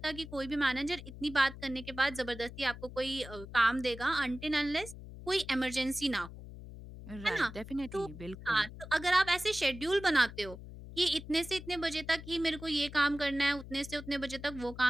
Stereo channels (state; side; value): noise; left; hum, 13 dB below the sound